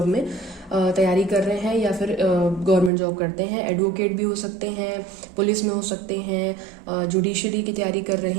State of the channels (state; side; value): drops out; left; at 2.9 s